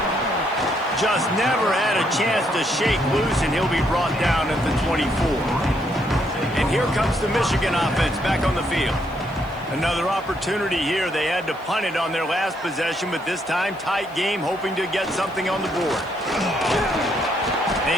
Just never had a chance to shake loose, and he'll be brought down at the 24. And here comes the Michigan offense back on the field. Another opportunity here. They had to punt it on their last possession, but this time tight game, hoping to get something on the board.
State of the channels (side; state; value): left; noise; hiss, 28 dB below the sound